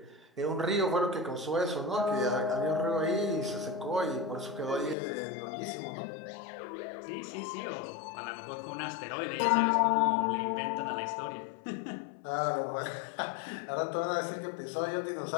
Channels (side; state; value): right; drops out; at 5.0 s